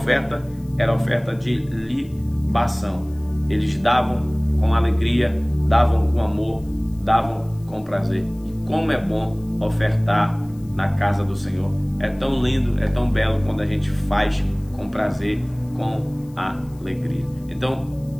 era a oferta de libação. Eles davam com alegria, davam com amor, davam com prazer. E como é bom ofertar na casa do Senhor. É tão lindo, é tão belo quando a gente faz com prazer, com alegria. Então,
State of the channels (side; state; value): left; noise; hiss, 29 dB below the sound